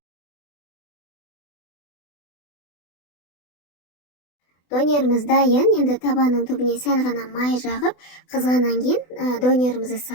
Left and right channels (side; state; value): right; late; 24 ms